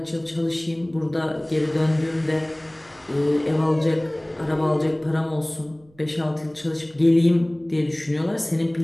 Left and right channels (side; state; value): right; noise; rumble, 30 dB below the sound